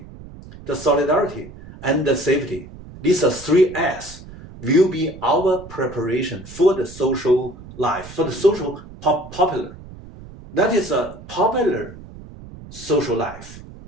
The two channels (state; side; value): noise; right; rumble, 17 dB below the sound